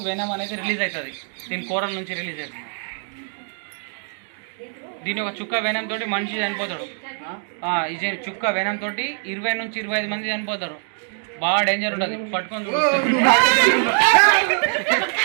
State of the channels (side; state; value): left; silent; 63 dB below the other